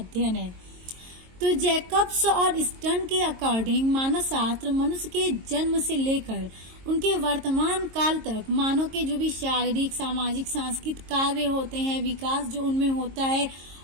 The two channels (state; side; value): late; left; 22 ms